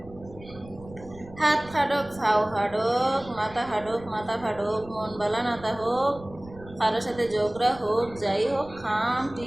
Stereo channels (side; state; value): right; noise; rumble, 19 dB below the sound